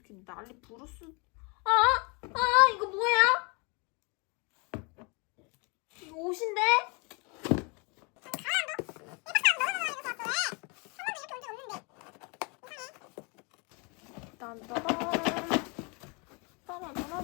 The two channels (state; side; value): quieter; right; 31.9 dB